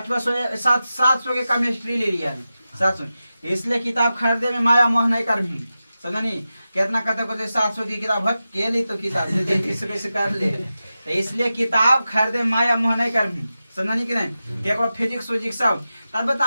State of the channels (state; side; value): inverted; both; correlation -0.93